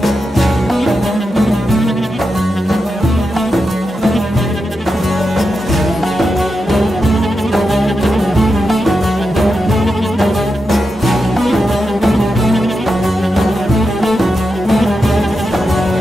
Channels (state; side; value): normal; both; correlation 0.88